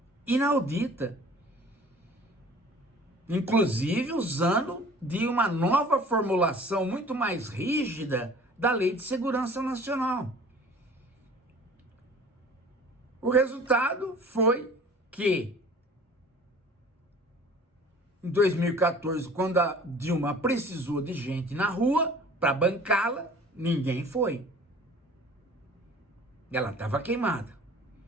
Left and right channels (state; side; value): normal; both; correlation 0.47